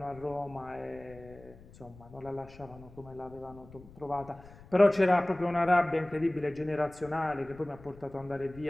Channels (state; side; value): noise; left; rumble, 20 dB below the sound